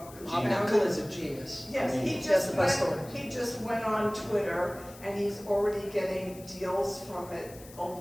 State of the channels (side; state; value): left; noise; hiss, 19 dB below the sound